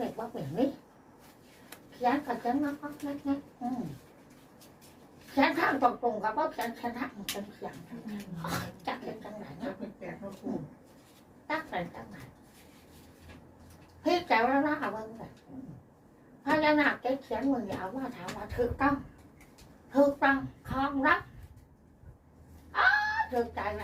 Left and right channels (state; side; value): identical; both; correlation 1.00